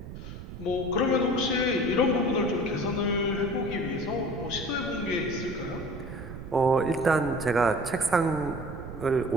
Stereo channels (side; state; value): right; noise; rumble, 11 dB below the sound